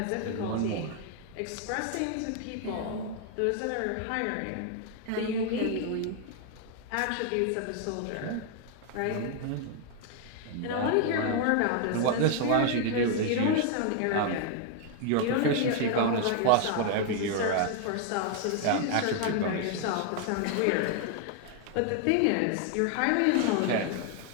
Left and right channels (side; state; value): both; different; correlation 0.00